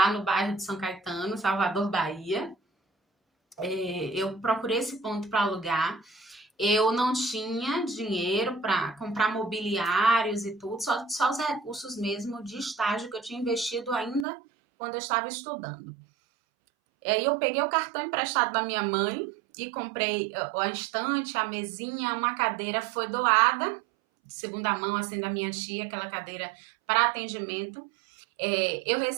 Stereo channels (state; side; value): drops out; left; at 14.2 s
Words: no bairro de São Caetano, Salvador, Bahia. Eu procurei esse ponto para alugar. Eu não tinha dinheiro para comprar mobiliários e tudo, só os recursos mesmo de estágio que eu tinha investido ainda quando eu estava estudando. Aí eu peguei o cartão emprestado da minha mãe e comprei a estante, a mesinha, uma cadeira foi doada, de segunda mão, assim, da minha tia, aquela cadeira para atendimento. Eu